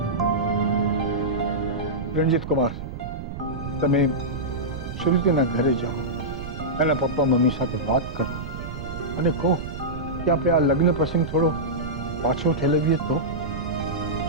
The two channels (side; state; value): right; noise; rumble, 9 dB below the sound